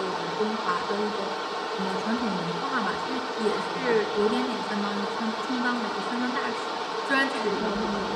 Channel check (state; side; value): identical; both; correlation 1.00